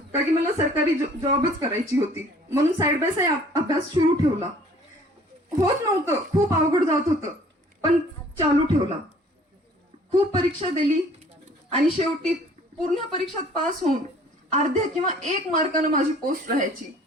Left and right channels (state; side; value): normal; both; correlation 0.54